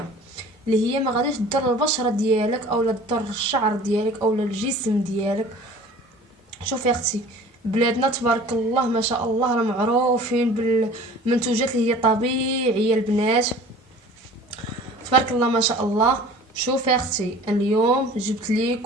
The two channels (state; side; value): normal; both; correlation 0.45